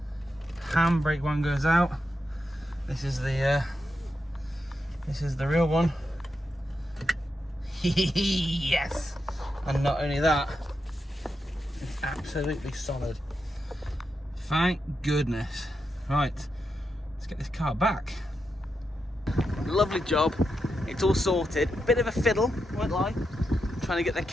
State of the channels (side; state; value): both; normal; correlation 0.86